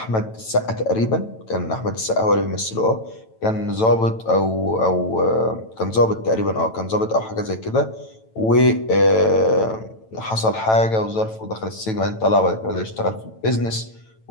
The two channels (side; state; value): right; late; 9.0 ms